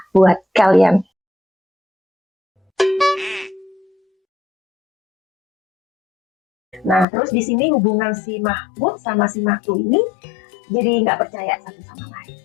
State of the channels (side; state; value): right; drops out; at 7.1 s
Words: buat kalian. Nah, terus di sini hubungan si Mahmud sama si Maktu ini jadi nggak percaya satu sama lain.